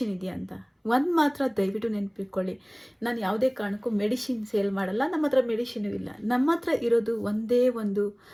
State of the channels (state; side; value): identical; both; correlation 1.00